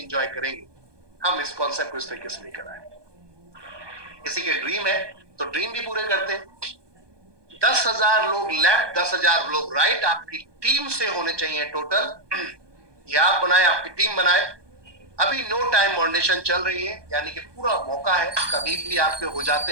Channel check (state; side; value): late; left; 1.2 ms